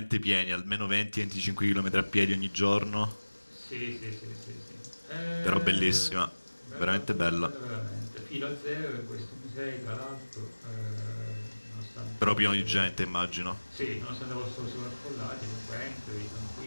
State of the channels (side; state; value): both; inverted; correlation -1.00